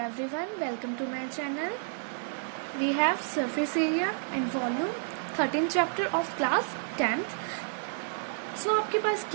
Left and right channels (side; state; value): left; silent; digital silence